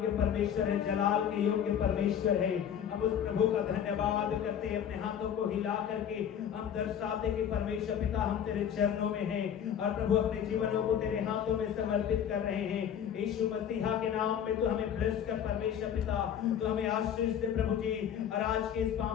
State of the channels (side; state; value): right; quieter; 8.9 dB